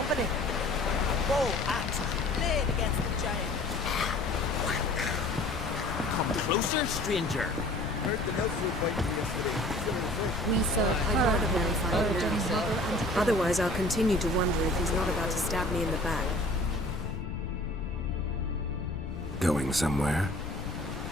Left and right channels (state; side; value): noise; left; rumble, 7 dB below the sound